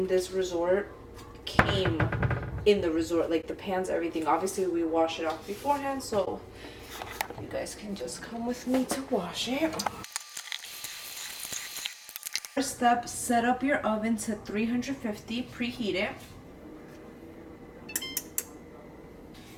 this resort came in the resort, like the pans, everything. Obviously we wash it off beforehand, so you guys can just come with me to wash it. First step, set up your oven to 350, preheat it.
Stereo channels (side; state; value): both; identical; correlation 1.00